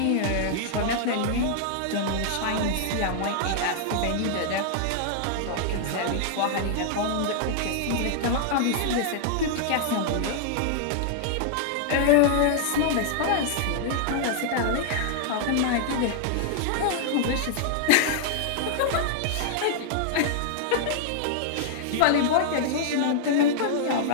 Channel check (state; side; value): different; both; correlation -0.01